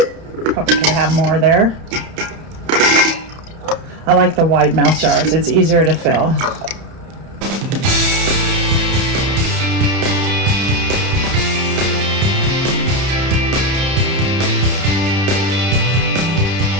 Probably could have more there. I like the wide mouth jars. It's easier to fill.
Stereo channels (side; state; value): left; late; 31 ms